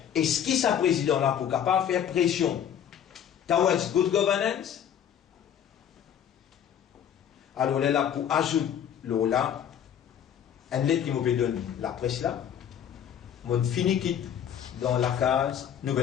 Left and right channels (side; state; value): right; quieter; 9.2 dB